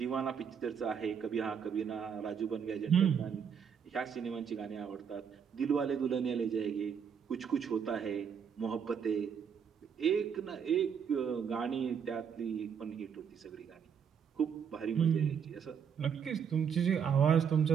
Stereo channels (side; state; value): left; quieter; 7.3 dB